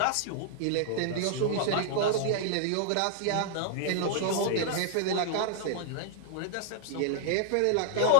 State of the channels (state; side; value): different; both; correlation -0.01